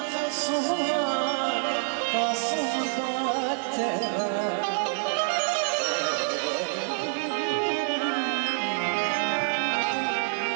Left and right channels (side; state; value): left; silent; digital silence